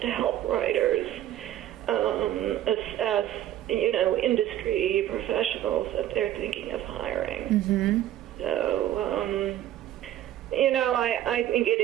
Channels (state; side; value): quieter; left; 12.4 dB